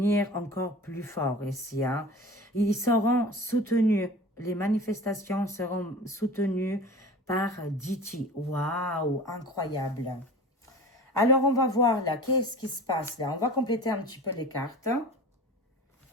encore plus fort ici, hein. Ils seront soutenus, les manifestations seront soutenues par Diti. Waouh, incroyable. Alors, on va voir là, qu'est-ce qui se passe là? On va compléter un petit peu les cartes.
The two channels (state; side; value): normal; both; correlation 0.38